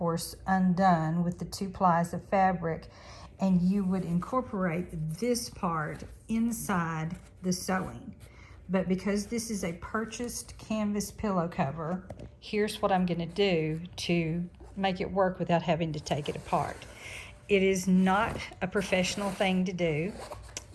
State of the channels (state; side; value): identical; both; correlation 1.00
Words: undone with the 2 plies of fabric, and you would incorporate this part inside the sewing. But because this is a purchased canvas pillow cover, here's what I'm going to do to make it work without having to take it apart. It is not a professional thing to do,